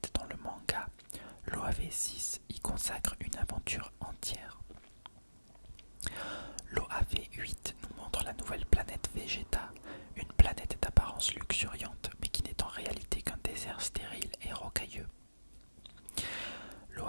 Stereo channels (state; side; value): inverted; both; correlation -1.00